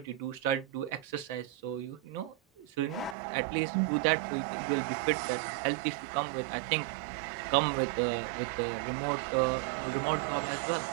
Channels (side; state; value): left; drops out; at 3.2 s